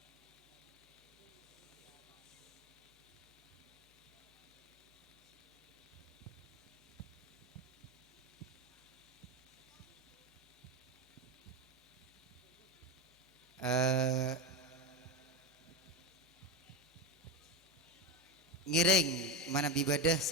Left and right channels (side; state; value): both; normal; correlation 0.16